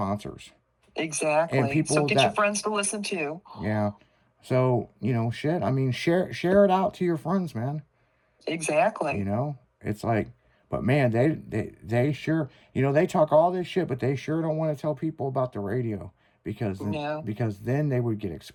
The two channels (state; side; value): identical; both; correlation 1.00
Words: Exactly. And people so get your friends to listen too. Yeah. So, you know, shit. I mean, share it out to your friends, man. Exactly. You know? It's like, but man, they sure, you know, they talk all this shit, but they sure don't want to tell people about the radio because then they would get